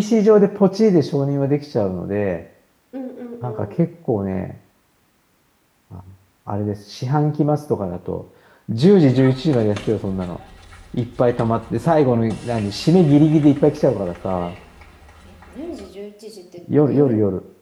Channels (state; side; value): identical; both; correlation 1.00